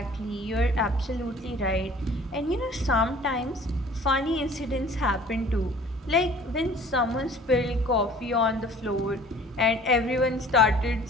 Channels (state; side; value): normal; both; correlation 0.50